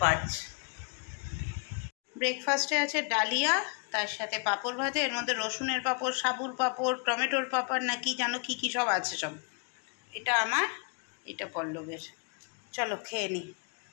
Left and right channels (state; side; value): quieter; right; 38.9 dB